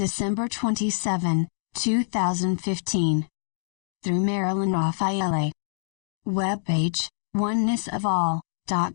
27, 2015. Through Marilyn Raffaele. Webpage,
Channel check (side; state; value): right; silent; digital silence